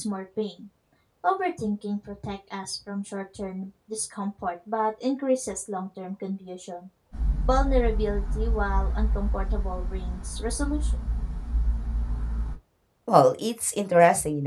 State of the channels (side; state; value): both; identical; correlation 1.00